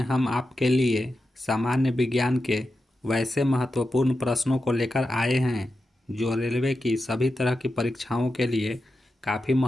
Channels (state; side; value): normal; both; correlation 0.90